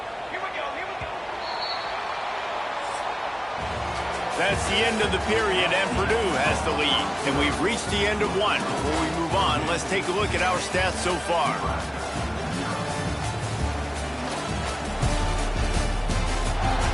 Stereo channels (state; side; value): identical; both; correlation 1.00